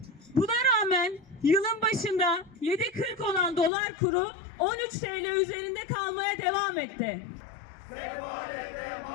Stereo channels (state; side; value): drops out; right; at 3.7 s